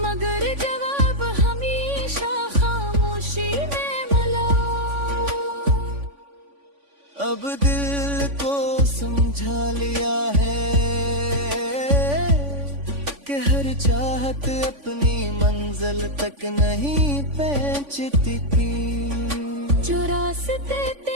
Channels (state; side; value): late; left; 3.5 ms